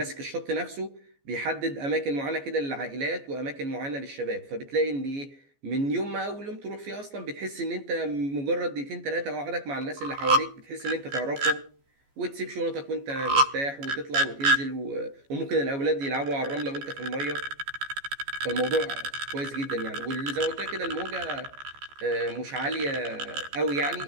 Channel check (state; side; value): late; left; 14 ms